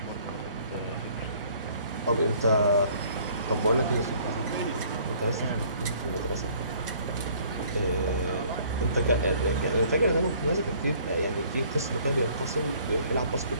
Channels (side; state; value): both; inverted; correlation -0.58